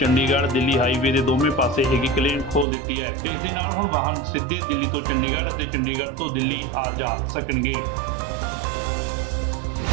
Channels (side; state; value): left; drops out; at 2.7 s